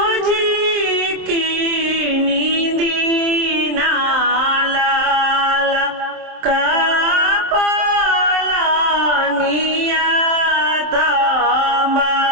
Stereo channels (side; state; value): left; late; 27 ms